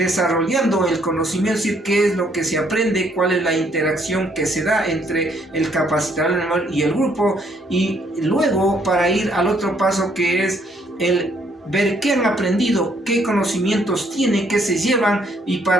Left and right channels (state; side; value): normal; both; correlation 0.68